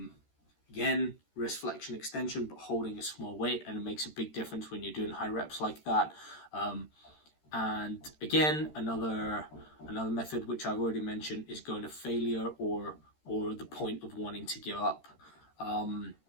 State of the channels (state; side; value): late; right; 13 ms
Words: again, wrist flexion extension, but holding a small weight, and it makes a big difference when you're doing high reps like that. And again, another method which I've already mentioned is going to failure or the point of wanting to give up. And